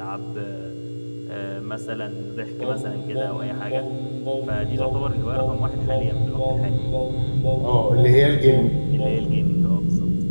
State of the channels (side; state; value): both; inverted; correlation -1.00